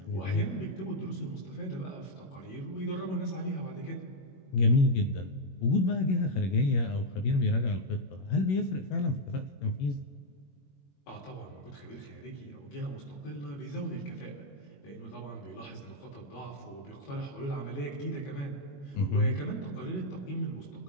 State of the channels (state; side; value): late; right; 21 ms